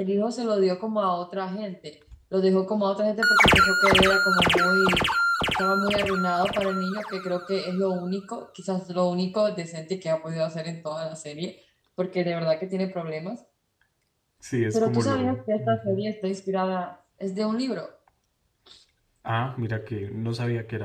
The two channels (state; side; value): identical; both; correlation 1.00